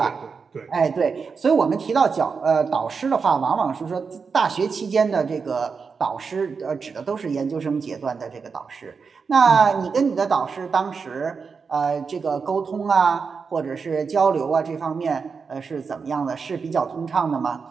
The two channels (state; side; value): quieter; left; 5.3 dB